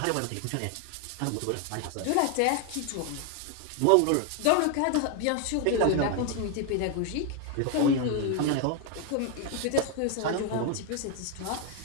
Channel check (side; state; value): both; different; correlation 0.01